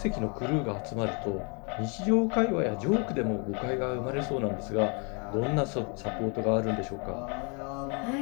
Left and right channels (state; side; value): quieter; right; 34.7 dB